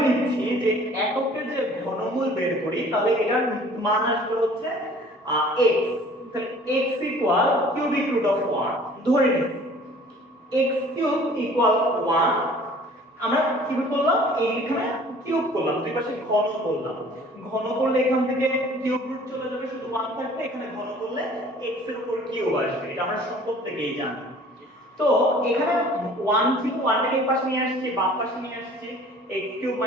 নিচ্ছি যে এককের যে ঘনমূল বের করি তাহলে এটার মান আসবে হচ্ছে x। তাহলে x equal cubic root of 1 ধরে নিচ্ছি x কিউব ইকুয়াল 1। আমরা কি করলাম এইখানে কিউব করলাম, দুই পাশে ঘন করলাম। ঘন করলে এখান থেকে কিউব রুট চলে যাবে, শুধু 1 থাকবে। এখানে ঘন করলে x এর উপর কিউব আসবে, এটা আমরা সূত্র থেকেই জানি। তো এখানে 1 ছিল, 1 টাকে এই পাশে নিয়ে আসছি, বাম পাশে নিয়ে আসছি, x কিউব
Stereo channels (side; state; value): both; normal; correlation 0.50